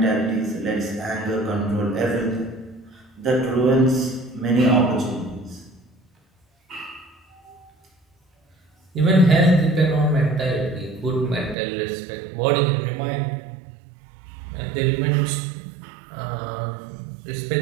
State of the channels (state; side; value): drops out; left; at 11.6 s